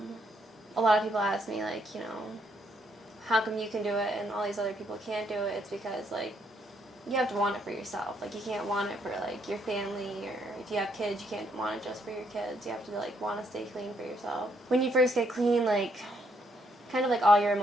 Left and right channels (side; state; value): both; normal; correlation 0.72